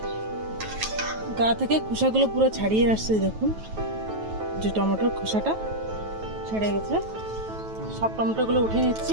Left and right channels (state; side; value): late; left; 9.2 ms